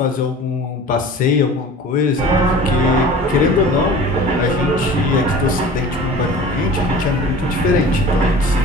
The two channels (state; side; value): normal; both; correlation 0.41